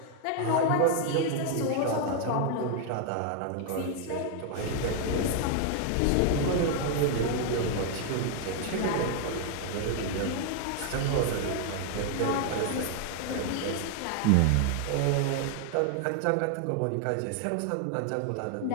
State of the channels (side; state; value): both; different; correlation 0.00